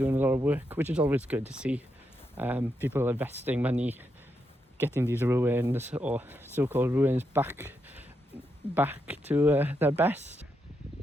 a lot of work, which is always good to see. People investing money, getting these ruins, or so-called ruins, back to their best.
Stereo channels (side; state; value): both; normal; correlation 0.82